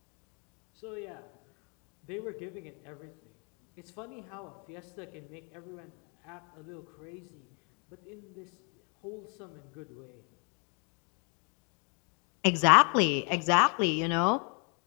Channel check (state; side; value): quieter; right; 36.1 dB